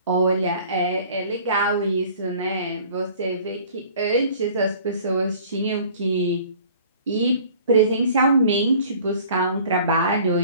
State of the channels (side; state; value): both; inverted; correlation -0.50